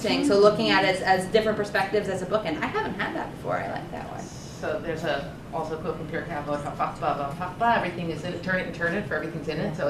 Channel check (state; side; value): identical; both; correlation 1.00